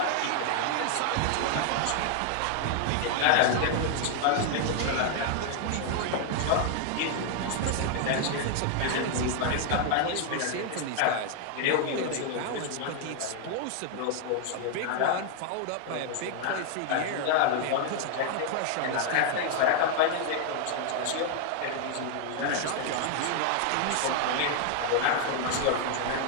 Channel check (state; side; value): different; both; correlation 0.00